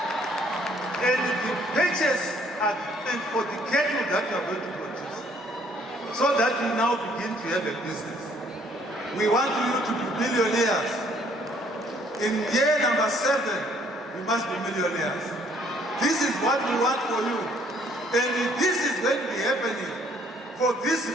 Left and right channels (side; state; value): both; normal; correlation 0.63